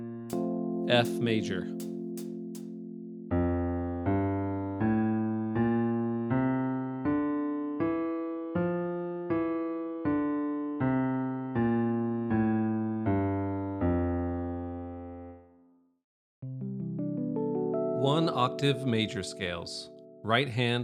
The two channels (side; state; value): both; identical; correlation 1.00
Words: F major, one octave major scales, right